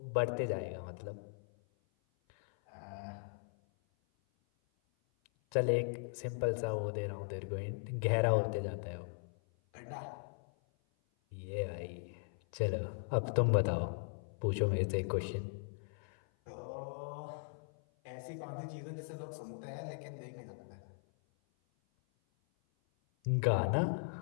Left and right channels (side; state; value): right; silent; 52 dB below the other